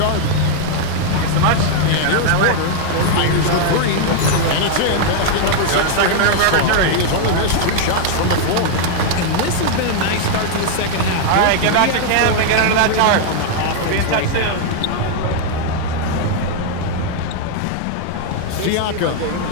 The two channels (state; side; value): different; both; correlation 0.00